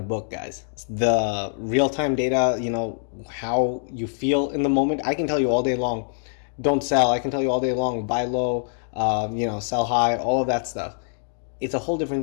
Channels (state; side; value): silent; right; digital silence